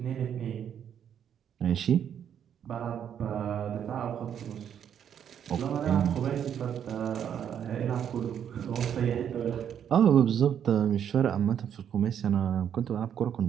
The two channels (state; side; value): quieter; left; 8.9 dB